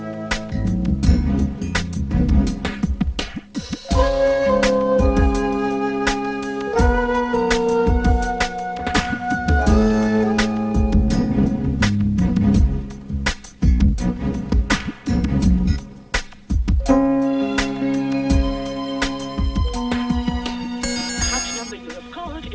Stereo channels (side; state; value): both; identical; correlation 1.00